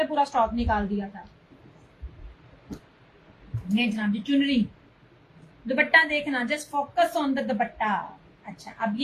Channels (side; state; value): both; identical; correlation 1.00